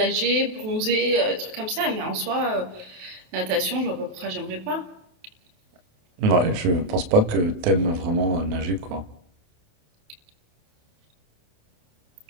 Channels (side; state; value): left; late; 28 ms